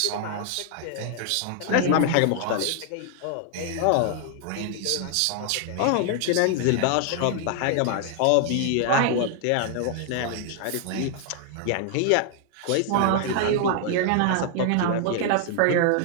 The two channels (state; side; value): different; both; correlation 0.00